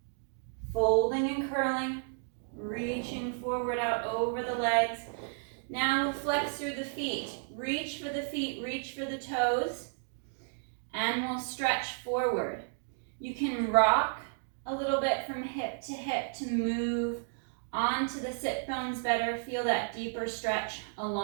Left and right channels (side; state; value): left; silent; digital silence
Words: Folding and curling. Reaching forward out over the legs. Now we'll flex through the feet. Reach for the feet, reach for the toes. And we'll stretch forward. You can rock a little bit from hip to move onto the sit bones better. Feel that deeper stretch